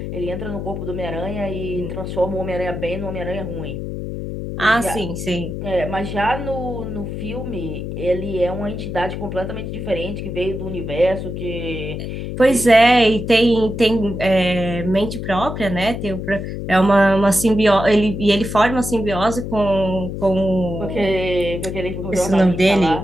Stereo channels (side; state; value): left; noise; hum, 6 dB below the sound